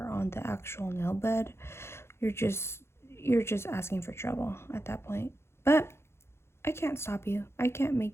on the actual nail bed. You're just asking for trouble at that point. But I can't stop you. I can't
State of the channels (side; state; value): right; late; 0.12 ms